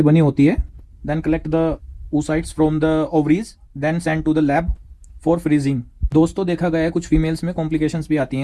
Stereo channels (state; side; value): identical; both; correlation 1.00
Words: बनी होती है। Then collect the oocytes from the ovaries, then send to the lab for freezing. दोस्तों, देखा गया है कुछ फीमेल्स में कॉम्प्लिकेशंस भी आती हैं